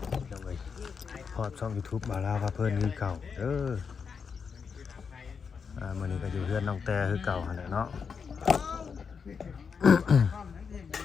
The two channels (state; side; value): quieter; right; 6.0 dB